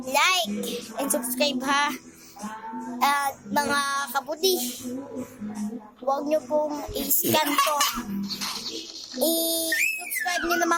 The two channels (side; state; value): both; identical; correlation 1.00